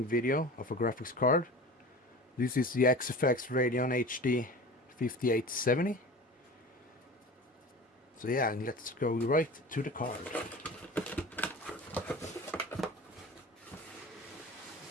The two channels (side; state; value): both; normal; correlation 0.35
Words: video of a graphics card. This is the XFX Radeon HD 5870. So yeah, let's go right to the card.